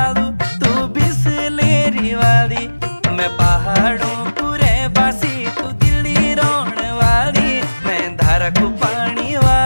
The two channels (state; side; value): inverted; both; correlation -1.00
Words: तू बिसलेरी वाली। मैं पहाड़ों कुरे बासी तू दिल्ली रोण वाली, मैं धारा को पानी